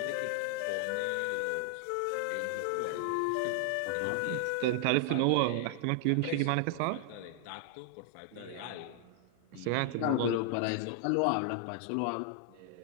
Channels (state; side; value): different; both; correlation 0.00